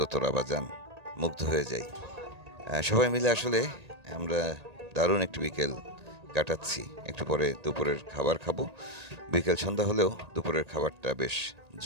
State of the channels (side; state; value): left; late; 1.8 ms